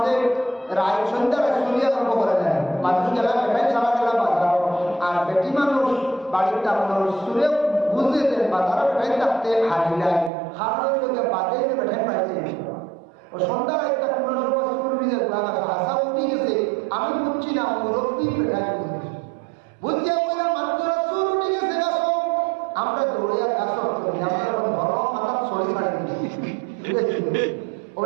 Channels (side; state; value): left; drops out; at 10.3 s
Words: রায় সন্ধ্যার সুরিয়া আরম্ভ করে দেয়। মানুষ গেলা বেটাই সারা গেলা বাজার আর বেটি মানুষ বাড়ির তার সুরে বুঝতে দেন বাজার বেটাই থাকতে হারি নাই হারের লোকে বাদে বেটাই পাইছে ও সন্ধ্যার একটা কোনো সময় সুর ভিজে হাসা উঠি গেছে। আমি বুঝছি না মুরব্বী বেটাই বুঝেছি বুঝতে বলে মাত্র সুর উঠে গেছে গাছ আমরা দৌড়িয়া গাছ আমরা ঘর মাথা ছড়ি ছাড়ি ও